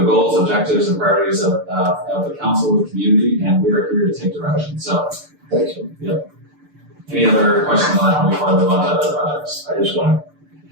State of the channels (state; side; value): late; left; 6.8 ms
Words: goals, objectives, and priorities of the council, the community, and we are here to take direction. So, Thanks. any other questions on that before I move on to other projects? I just want